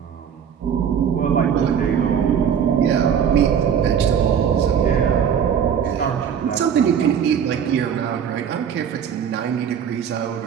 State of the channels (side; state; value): left; quieter; 8.0 dB